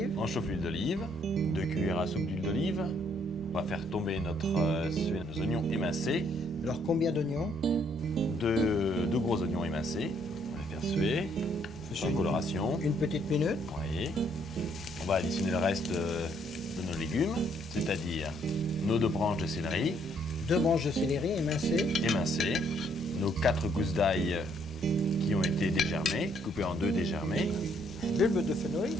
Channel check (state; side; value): normal; both; correlation 0.68